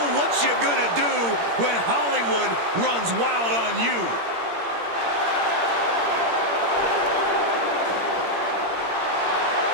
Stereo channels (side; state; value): left; late; 17 ms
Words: what you gonna do when Hollywood runs wild on you?